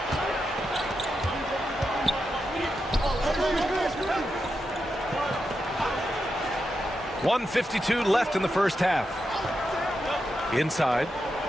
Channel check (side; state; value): both; normal; correlation 0.87